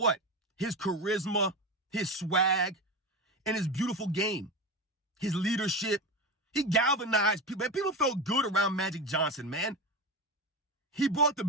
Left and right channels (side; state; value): both; normal; correlation 0.21